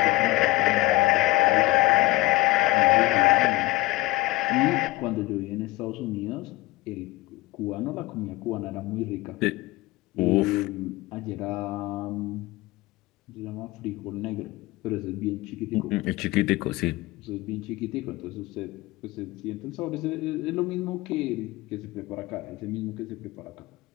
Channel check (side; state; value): right; quieter; 19.6 dB